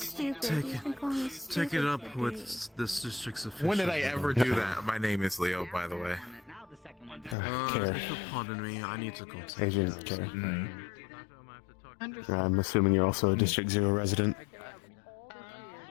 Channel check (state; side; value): drops out; right; at 7.4 s